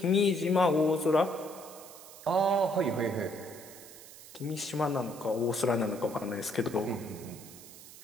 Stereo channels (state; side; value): noise; right; hiss, 17 dB below the sound